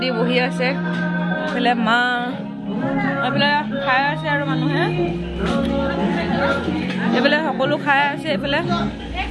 বহি আছে এইফালে মা এইফালে খাই আছে আৰু মানুহে এইফালে সকলো খাই আছে এইফালে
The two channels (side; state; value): both; identical; correlation 1.00